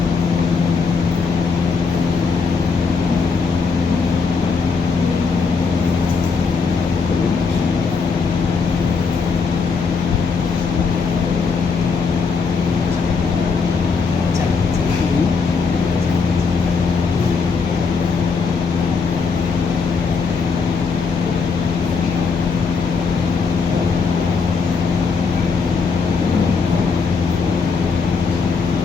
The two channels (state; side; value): quieter; right; 5.0 dB